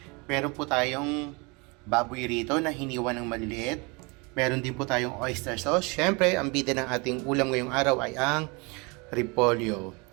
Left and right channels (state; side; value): quieter; left; 28.8 dB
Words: Meron po tayong baboy rito na hiniwa ng maliliit. Meron din po tayong oyster sauce. Syempre, ang bida ng ating ulam ngayong araw ay ang repolyo.